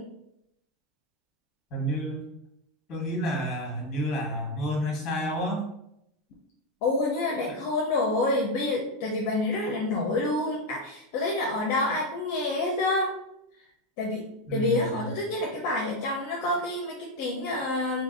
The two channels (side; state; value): both; normal; correlation 0.07